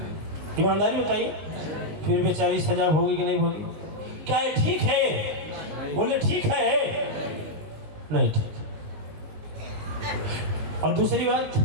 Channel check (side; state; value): left; late; 20 ms